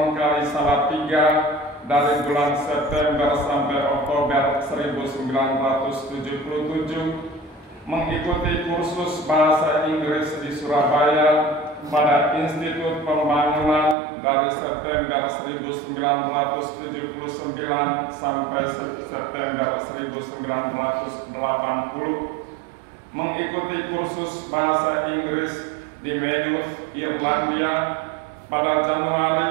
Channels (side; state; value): left; drops out; at 14.0 s